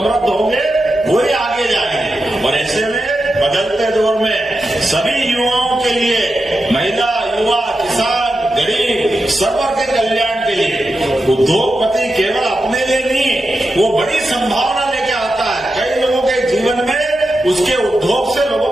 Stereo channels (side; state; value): both; normal; correlation 0.89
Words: होंगे वही आगे जाएंगे। और ऐसे में बदलते दौर में सभी युवाओं के लिए, महिला, युवा, किसान, गरीब, सर्व के कल्याण के लिए उद्योगपति केवल अपने लिए नहीं, वो बड़ी संभावना लेके आता है। कई लोगों के जीवन में उसके उद्योग से लोगों